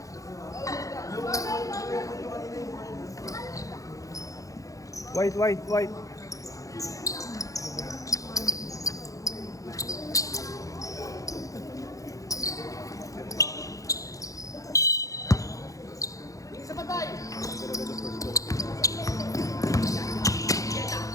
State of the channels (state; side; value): late; right; 0.16 ms